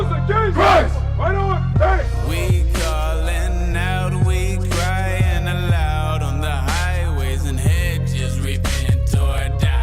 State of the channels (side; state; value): both; identical; correlation 1.00